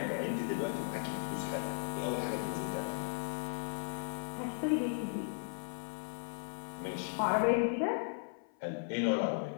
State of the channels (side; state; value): right; silent; 53 dB below the other